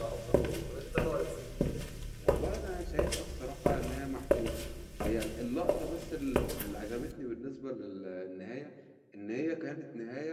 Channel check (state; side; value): identical; both; correlation 1.00